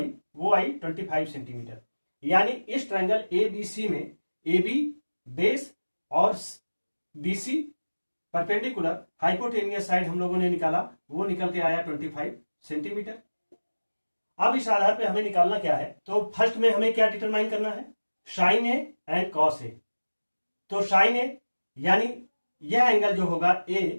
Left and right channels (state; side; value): inverted; both; correlation -1.00